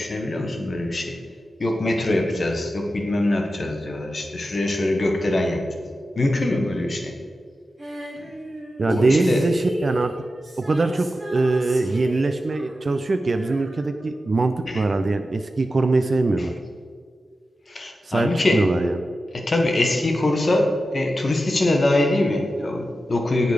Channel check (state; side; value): normal; both; correlation 0.92